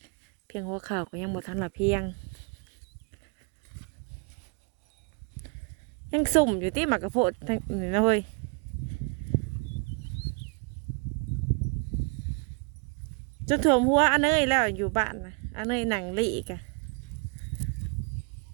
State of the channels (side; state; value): left; quieter; 34.3 dB